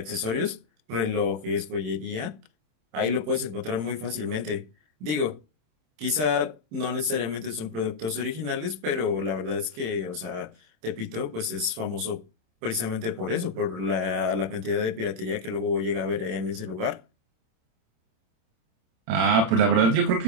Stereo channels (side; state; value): left; late; 27 ms